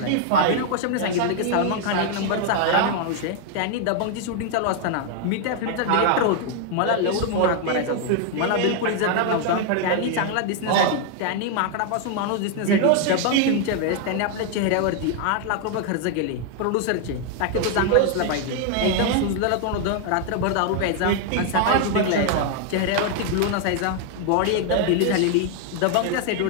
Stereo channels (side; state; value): both; different; correlation 0.00